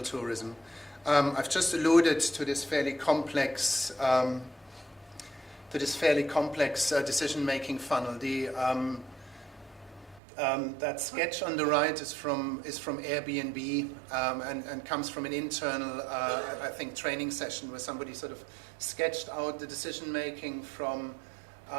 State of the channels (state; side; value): drops out; left; at 10.2 s